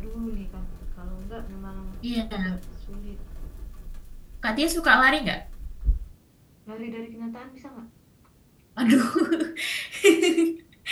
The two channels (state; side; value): identical; both; correlation 1.00